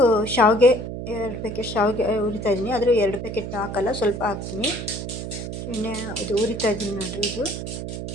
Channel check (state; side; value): noise; right; hum, 6 dB below the sound